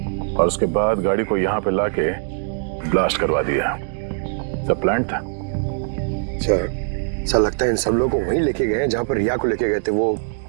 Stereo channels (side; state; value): left; silent; digital silence